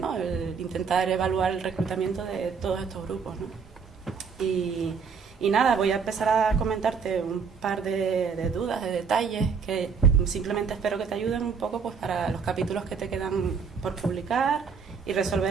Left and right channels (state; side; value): quieter; left; 5.9 dB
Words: El intentar evaluar el reclutamiento de todos estos grupos, ¿no? Y nada, voy a empezar a comentarte un par de dudas, de detalles que simplemente espero que te ayuden un poco pues para los capítulos que te quedan por publicar y